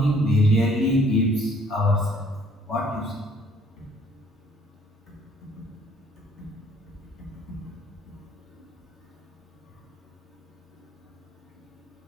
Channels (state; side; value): normal; both; correlation 0.60